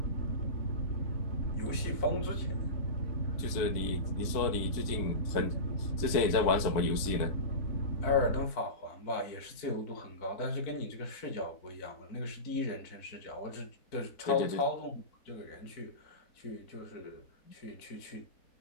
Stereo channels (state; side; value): late; right; 4.5 ms